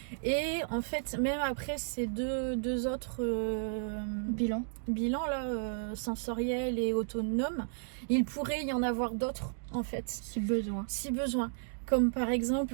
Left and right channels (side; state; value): left; silent; digital silence